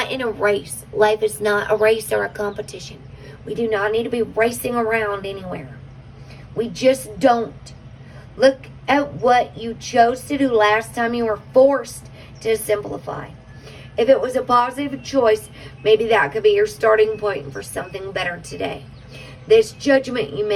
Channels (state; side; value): identical; both; correlation 1.00